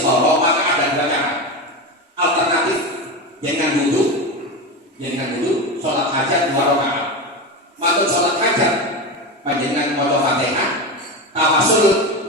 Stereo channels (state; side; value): normal; both; correlation 0.20